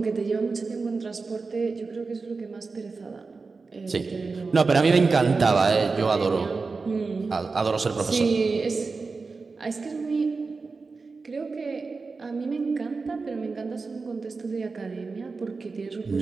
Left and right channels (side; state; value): left; quieter; 4.3 dB